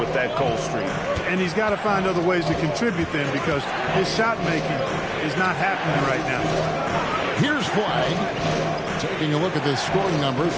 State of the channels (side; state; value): both; identical; correlation 1.00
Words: that cold streak. And he's got to find other ways to contribute then, because his shot making is not happening right now. Here's Flag. Taking a look at the scoring numbers.